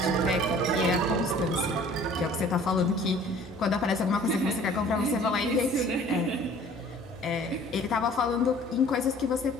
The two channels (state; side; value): normal; both; correlation 0.51